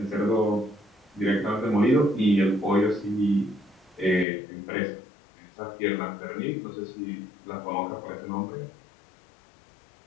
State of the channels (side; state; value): right; drops out; at 4.2 s